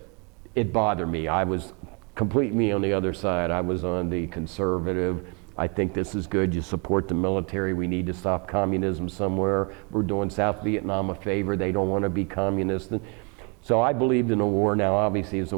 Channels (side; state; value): left; quieter; 34.2 dB